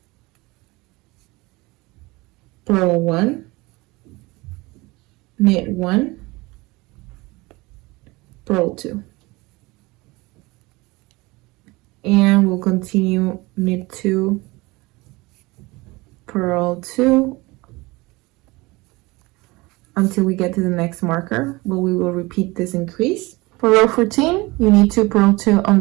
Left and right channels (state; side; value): quieter; left; 22.8 dB